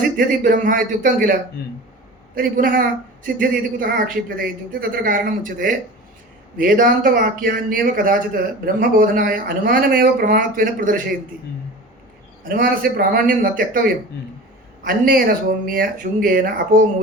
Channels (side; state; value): both; normal; correlation 0.35